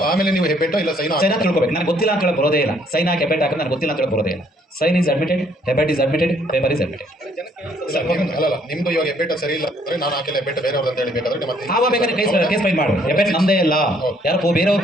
ಆಮೇಲೆ ನೀವು ಹೆಬ್ಬೆಟ್ಟ ಇಲ್ಲ ಸೈನ್ ತಿಳ್ಕೊಬೇಕು. ನನಗೆ ಗೊತ್ತಿಲ್ಲ ಅಂತ ಹೇಳಿ ಬರೋದೇ ಇಲ್ಲ. ಸೈನ್ ಹಾಕಿ ಹೆಬ್ಬೆಟ್ ಹಾಕಿದ್ರೆ ನನಗೆ ಗೊತ್ತಿಲ್ಲ ಅಂತ ಹೇಳಿ ಬರೋದೇ ಇಲ್ಲ. ಸೈನ್ ಈಸ್ ಅಡ್ಮಿಟೆಡ್, ಹೆಬ್ಬೆಟ್ is admitted, paper is admitted. ಅಲ್ಲ, ನಿಮ್ದು ಇವಾಗ ಹೆಬ್ಬೆಟ್ಟ ಸರಿ ಇಲ್ಲ ಅಂದ್ರೆ ನಾನು ಹಾಕಿಲ್ಲ ಹೆಬ್ಬೆಟ್ಟ ಬೇರೆಯವ್ರು ಅಂತ ಹೇಳಿ ಬೇಕಾದ್ರೆ ಮತ್ತೆ ಆವಾಗ ಬೇಕಾದ್ರೆ ಕೇಸ್ ಫೈಲ್ ಮಾಡು. ಹೆಬ್ಬೆಟ್ ನಮ್ಮದೇ ಇಲ್ಲ, ಯಾರೋ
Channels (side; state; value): both; normal; correlation 0.65